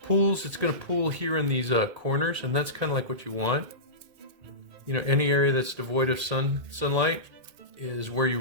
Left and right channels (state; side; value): late; left; 1.8 ms